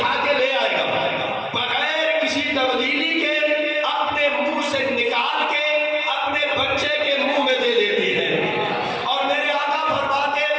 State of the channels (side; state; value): both; identical; correlation 1.00